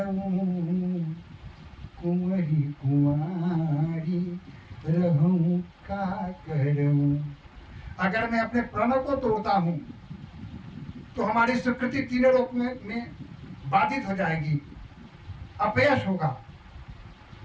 कुंवरी कुंवारी रहूं का करऊं। अगर मैं अपने प्रण को तोड़ता हूं तो हमारी स्वीकृति तीनों लोक में बाधित हो जाएगी, अपयश होगा।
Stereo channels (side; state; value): both; identical; correlation 1.00